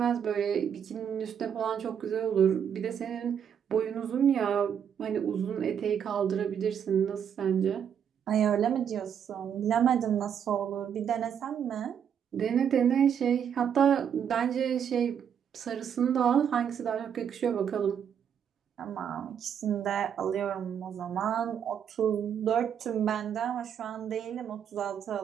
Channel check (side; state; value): left; quieter; 8.3 dB